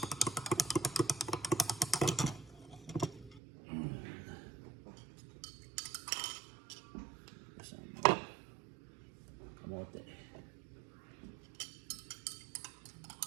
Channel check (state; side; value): drops out; left; at 3.4 s